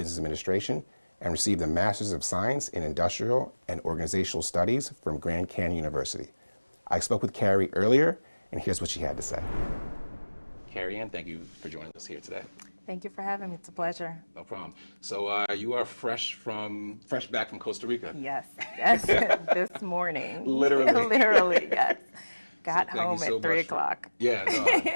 Administration and received a Master's of Science in Industrial and Organizational Studies from Grand Canyon University. I spoke with Kerri earlier, and here's what she had to say. Kerri-Ann, thank you for joining us here today. Thank you for having me. It's a pleasure. No problem. So you are fresh back from Costa Rica. Yes, this morning. Literally. Literally, yes. Got So home at 3 o'clock. Yeah, no,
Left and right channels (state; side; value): inverted; both; correlation -1.00